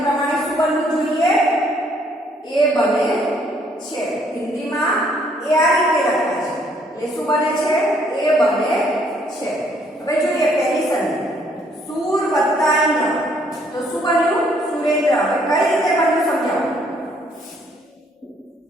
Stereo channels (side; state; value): both; normal; correlation 0.66